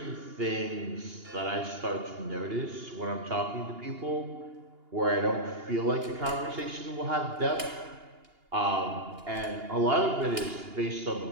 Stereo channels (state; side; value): late; left; 2.8 ms